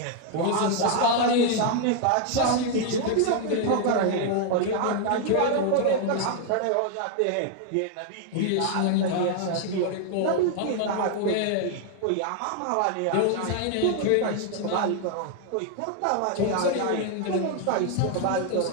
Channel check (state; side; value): different; both; correlation 0.00